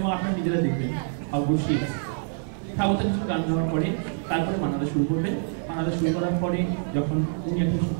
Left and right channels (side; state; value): left; silent; 61 dB below the other